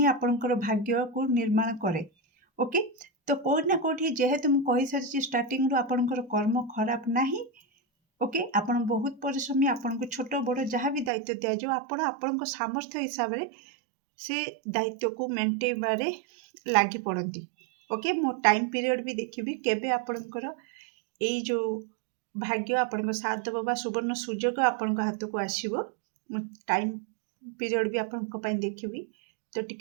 आपणकर भाग्य को निर्माण करे ओके तो कोठ ना कोठी जेहेतु मु कहि सारची स्टार्टिंग रो आपणकर कर्म खराब नाही ओके आपण बहुत परिश्रमी आपनको छोट बड़ जहाँ भी दायित्व दिया जो आपण आपणक सामर्थ्य हिसाब रे से दायित्व को मेंटेबारे लागी पड़ती ओके मो टाइम पीरियड भी देखिबी केबे आपणकर ए जो भाग्य आपणक साथ देबो बा सुवर्ण सुजोग आपणक हाथ को आसीबो मो टाइम पीरियड भी आपणक पई देखिबी तो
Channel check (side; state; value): left; drops out; at 11.1 s